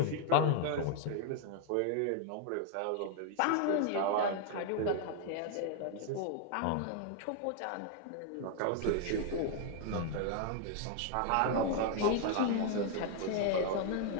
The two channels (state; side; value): different; both; correlation 0.00